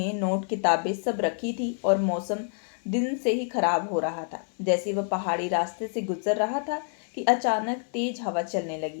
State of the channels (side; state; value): right; silent; 60 dB below the other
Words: नोट, किताबें सब रखी थी और मौसम दिन से ही खराब हो रहा था। जैसे वह पहाड़ी रास्ते से गुजर रहा था कि अचानक तेज हवा चलने